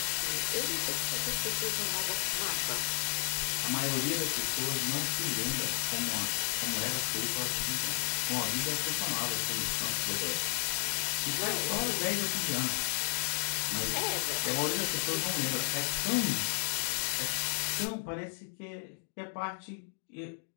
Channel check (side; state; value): right; silent; digital silence